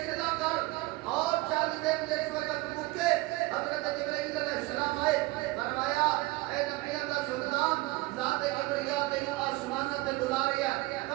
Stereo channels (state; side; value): quieter; left; 21.0 dB